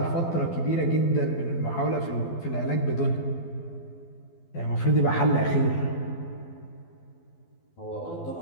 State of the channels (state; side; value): late; right; 12 ms